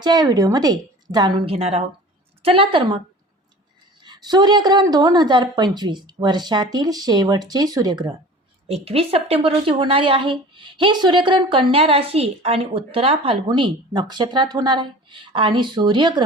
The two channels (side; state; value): both; normal; correlation 0.41